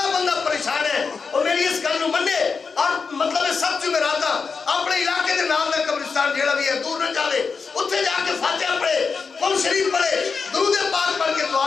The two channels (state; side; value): quieter; right; 5.1 dB